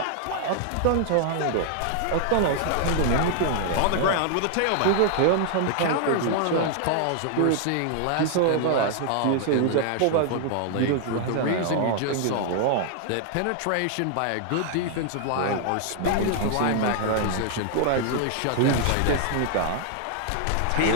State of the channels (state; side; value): different; both; correlation 0.00